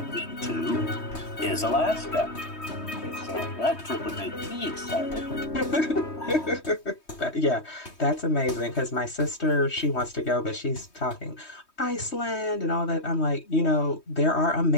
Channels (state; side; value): late; right; 3.2 ms